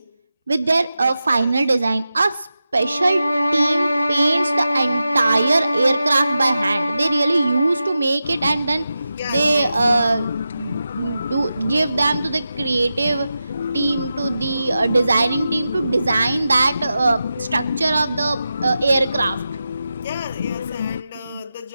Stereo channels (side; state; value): both; inverted; correlation -0.91